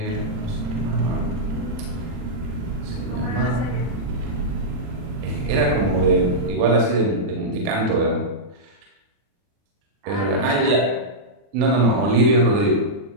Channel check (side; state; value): left; late; 40 ms